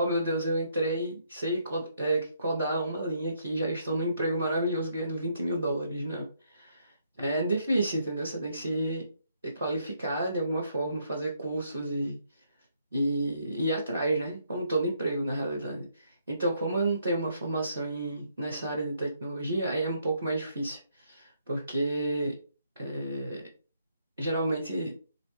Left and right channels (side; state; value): both; inverted; correlation -0.72